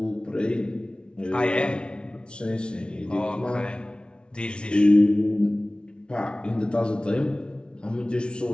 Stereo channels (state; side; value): late; right; 0.057 ms